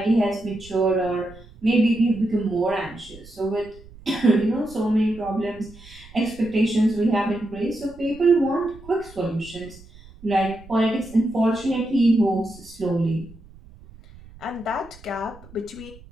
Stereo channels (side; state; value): right; noise; rumble, 21 dB below the sound